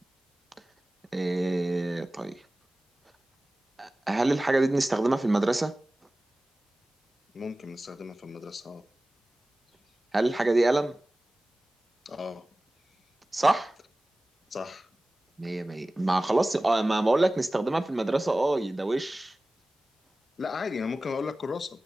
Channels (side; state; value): both; normal; correlation 0.97